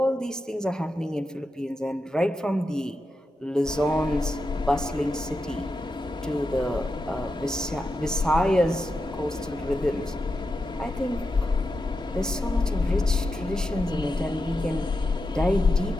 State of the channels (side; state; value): both; normal; correlation 0.88